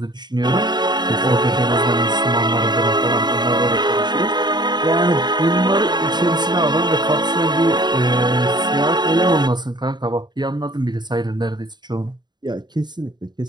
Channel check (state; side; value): late; left; 0.21 ms